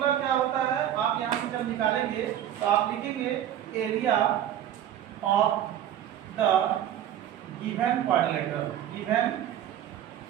क्या होता है, आप यहाँ से जब निकालेंगे तो आप लिखेंगे area of the given quadrilateral, given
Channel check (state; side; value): quieter; left; 11.0 dB